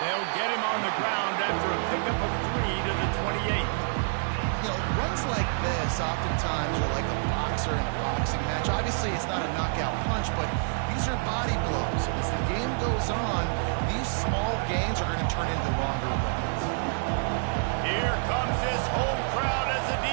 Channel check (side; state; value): left; silent; 60 dB below the other